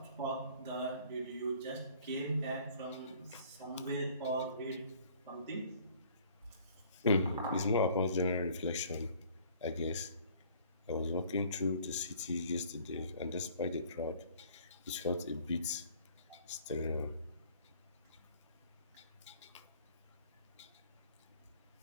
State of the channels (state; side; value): inverted; both; correlation -0.54